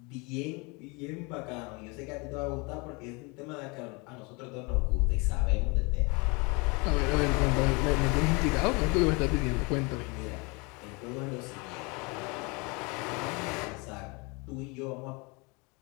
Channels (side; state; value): right; quieter; 28.9 dB